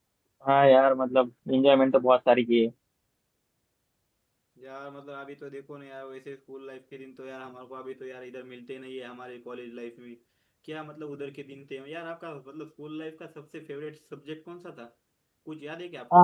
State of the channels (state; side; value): identical; both; correlation 1.00